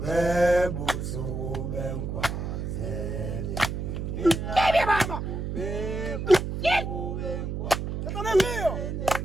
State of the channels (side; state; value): right; noise; hum, 4 dB below the sound